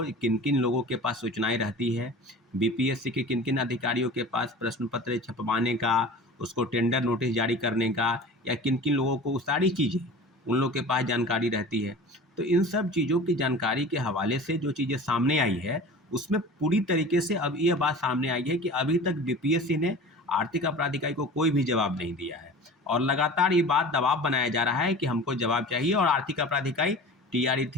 किन किन लोगों के पास सूचनाएं रहती है, बीपीएससी के किन किन अधिकारियों के पास प्रश्न पत्र छपवाने का, उसको टेंडर नोटिस जारी करने का या किन किन लोगों को, सारी चीज़ें उन लोगों के पास जानकारी रहती है। तो इन सब चीज़ों की जानकारी के हवाले से जो चीज़ें सामने आई है उसमें पूरी तरीके से अब ये बात सामने आई है कि अभी तक बीपीएससी ने आर्थिक अपराध इकाई को कोई भी जवाब नहीं दिया है और लगातार ये बात दबाव बनाया जा रहा है कि हमको जवाब चाहिए। और आर्थिक अपराध इकाई टीआरई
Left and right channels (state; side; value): normal; both; correlation 0.38